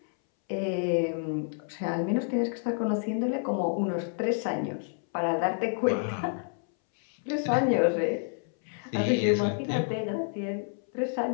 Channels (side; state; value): right; silent; 59 dB below the other